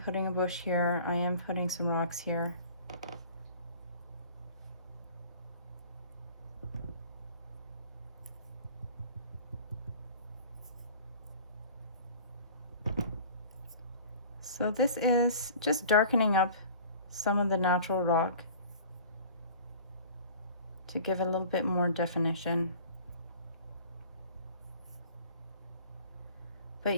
a bush here, I am putting some rocks here. So this is just darkening up some of the natural rock to give it a little bit more definition. But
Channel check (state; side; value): inverted; both; correlation -0.45